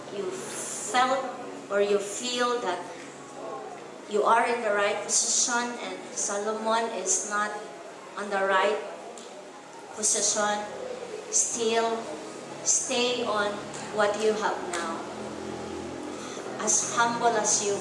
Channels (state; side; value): identical; both; correlation 1.00